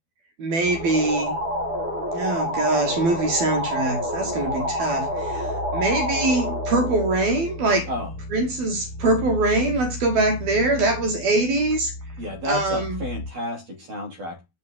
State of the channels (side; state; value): left; late; 12 ms